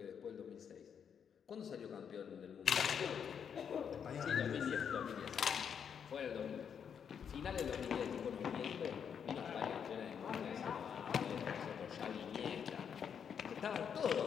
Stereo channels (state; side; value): quieter; right; 7.6 dB